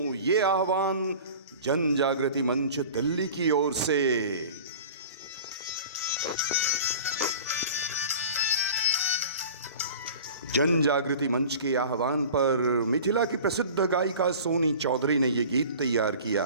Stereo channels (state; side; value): inverted; both; correlation -0.40